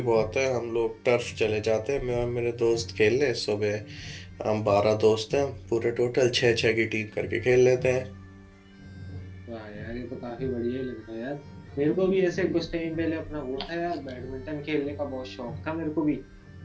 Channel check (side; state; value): both; identical; correlation 1.00